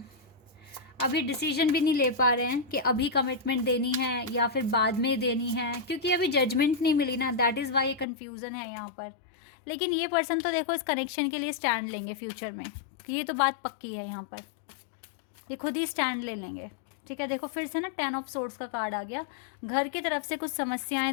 अभी डिसीजन भी नहीं ले पा रहे हैं कि अभी कमिटमेंट देनी है या फिर बाद में देनी है, क्योंकि अभी जजमेंट नहीं मिली ना, दैट इज़ वाई ये कन्फ्यूज़न है यहाँ पर। लेकिन ये पर्सन तो देखो इस कनेक्शन के लिए स्टैंड लेंगे फ्यूचर में, ये तो बात पक्की है यहाँ पर, ये खुद ही स्टैंड ले लेंगे। ठीक है, देखो फिर से ना 10 ऑफ सोर्ड्स का कार्ड आ गया। घर की तरफ से कुछ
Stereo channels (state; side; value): drops out; right; at 8.1 s